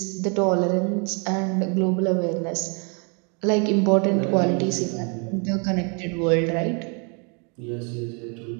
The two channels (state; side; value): quieter; left; 35.4 dB